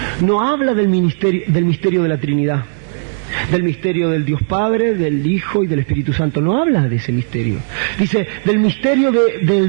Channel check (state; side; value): silent; left; digital silence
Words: No habla del misterio de la Trinidad, del misterio del Dios Padre, del Hijo y del Espíritu Santo. No habla de ese misterio. Dice del misterio